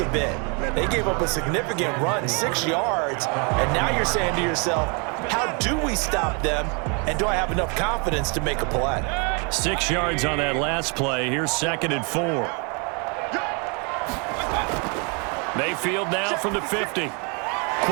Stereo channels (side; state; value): left; quieter; 34.5 dB